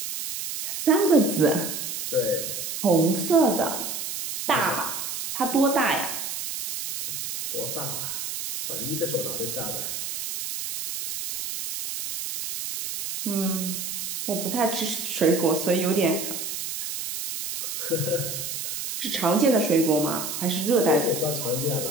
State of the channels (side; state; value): right; noise; hiss, 5 dB below the sound